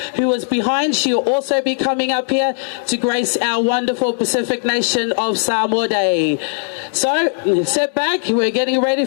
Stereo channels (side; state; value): right; silent; 68 dB below the other